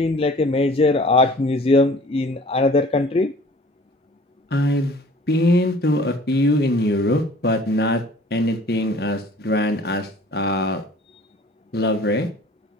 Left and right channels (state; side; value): normal; both; correlation 0.49